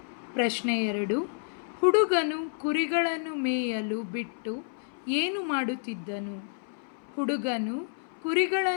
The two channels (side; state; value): right; silent; 58 dB below the other